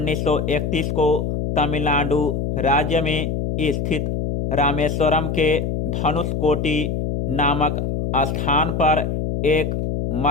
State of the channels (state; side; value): noise; left; hum, 1 dB below the sound